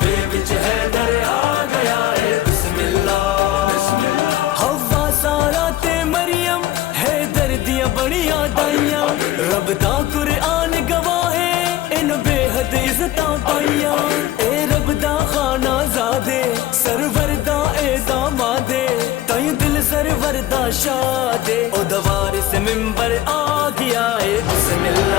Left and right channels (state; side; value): quieter; right; 13.8 dB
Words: وچ حیدر آ گیا ہے بسم اللہ حوا سارا تے مریم حیدر دیاں بڑیاں دائیاں رب دا قرآن گواہ ہے ان بے حد عزتاں پائیاں اے رب دا خانہ زادے سرور دا اے دامادے تائیں دل سرور دا شادے او دوار سے ممبر آ گیا ہے بسم